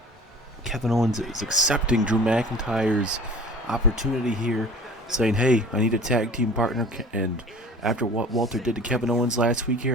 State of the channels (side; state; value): both; normal; correlation 0.44